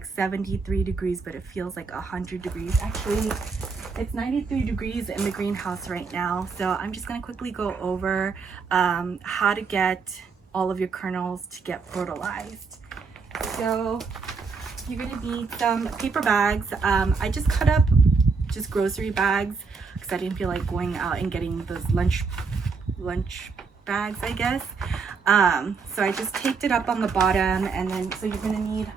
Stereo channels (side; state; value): left; quieter; 5.0 dB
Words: 73 degrees, but it feels like 100 degrees. Actually, it's 93 degrees in the greenhouse right now. So I'm just going to quickly go over how to get all of your kernels to get fertilized. So you're going to need some paper bags. I just cut up just grocery bags because I didn't feel like going out and getting those lunch bags, I guess. So I just taped it up on the bottom, and then so you're going to need